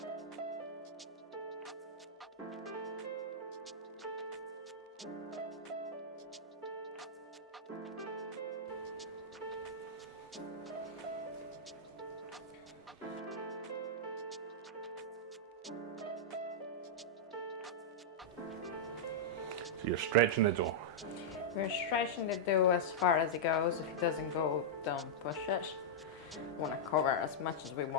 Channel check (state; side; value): normal; both; correlation -0.09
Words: So you're stretching the dough. We're stretching the dough as far as it goes. If it doesn't go, don't push it. We want to cover as much as we